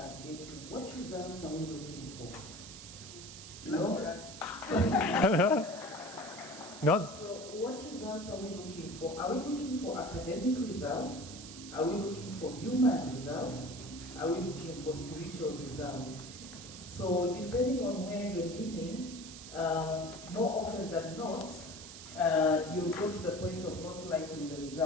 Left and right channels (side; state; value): right; noise; hiss, 13 dB below the sound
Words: getting. What results are we looking for? No? Not. So what results are we looking for? Are we looking for academic results? Are we looking for human results? Are we looking for spiritual results? So depending on where you're leaning, more often than not, you go to the point of not liking the